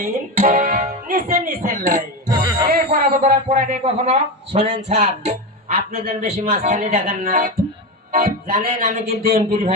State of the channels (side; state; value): both; normal; correlation 0.17